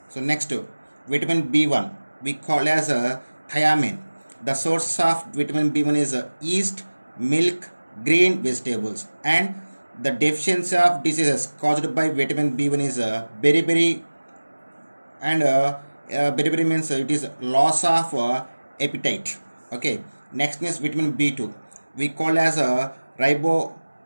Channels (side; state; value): both; inverted; correlation -1.00